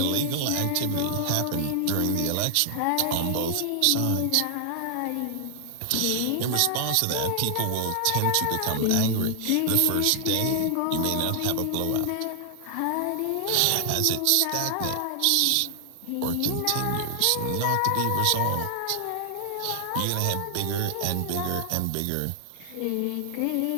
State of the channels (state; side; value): different; both; correlation 0.00